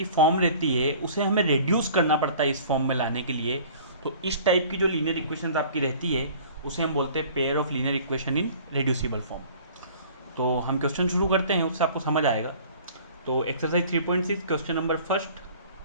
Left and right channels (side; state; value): both; inverted; correlation -0.48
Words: फॉर्म रहती है उसे हमें रिड्यूस करना पड़ता है इस फॉर्म में लाने के लिए। तो इस टाइप की जो लीनियर इक्वेशन आपकी रहती है उसे हम बोलते हैं pair of linear equation in reducible form. तो हम क्वेश्चन शुरू करते हैं, उससे आपको समझ आएगा। तो एक्सरसाइज 3.6 क्वेश्चन नंबर फर्स्ट